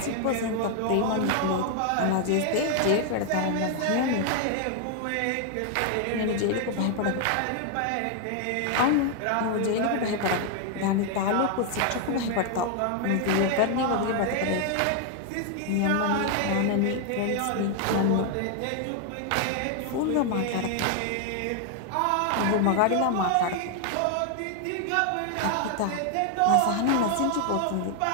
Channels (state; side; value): different; both; correlation 0.00